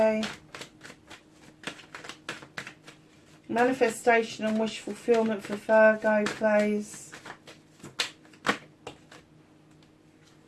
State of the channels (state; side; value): identical; both; correlation 1.00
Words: Manifestation and wish fulfillment for Virgo, please.